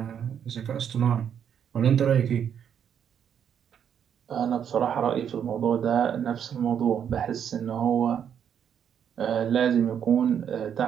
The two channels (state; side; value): quieter; left; 8.5 dB